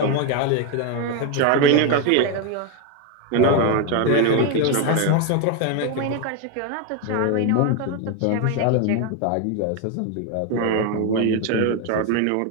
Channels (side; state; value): both; different; correlation 0.02